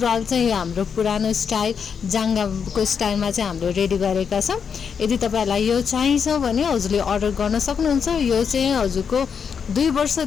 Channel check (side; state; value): right; quieter; 6.7 dB